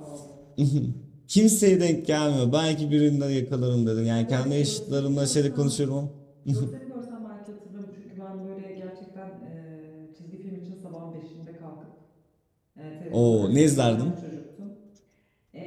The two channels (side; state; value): both; identical; correlation 1.00